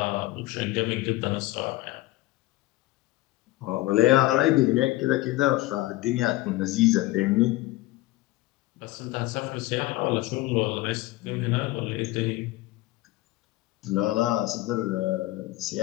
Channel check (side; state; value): right; quieter; 18.2 dB